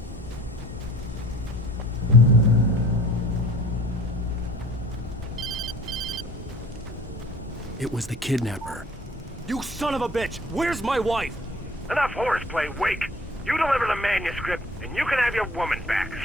It was the kidnapper. You son of a bitch! Where's my wife? Enough horseplay, Wake. You deliver the manuscript, and you can have your woman back.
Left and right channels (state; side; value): normal; both; correlation 0.49